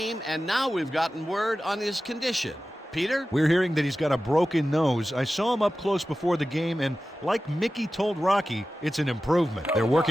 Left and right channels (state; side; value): normal; both; correlation 0.95